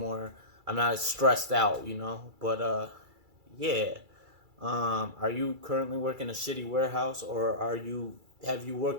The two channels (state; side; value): late; left; 2.3 ms